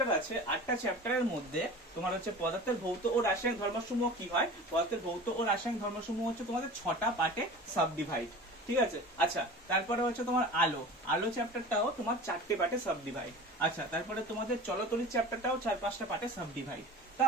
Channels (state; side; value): normal; both; correlation 0.37